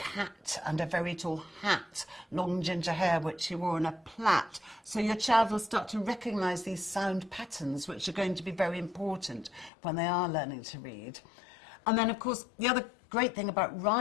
and a very tall hat, long ginger hair which she wore in a plait. So your child will start to recognise these sound patterns, which are going to be very important when they are learning to read. And then, of course, the other great thing about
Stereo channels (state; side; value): drops out; right; at 9.7 s